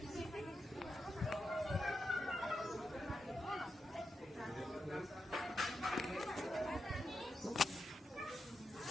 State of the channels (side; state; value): both; normal; correlation 0.87